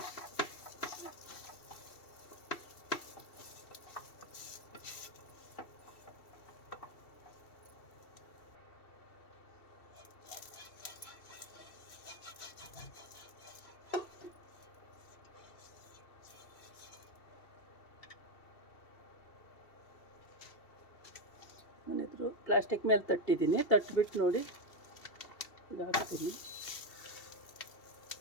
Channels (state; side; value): late; right; 2.7 ms